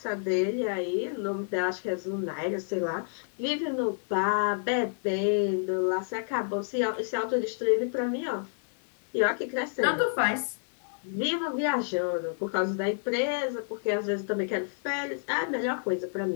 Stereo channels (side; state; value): right; silent; digital silence